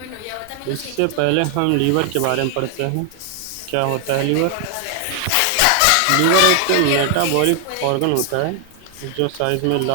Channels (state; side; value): different; both; correlation 0.00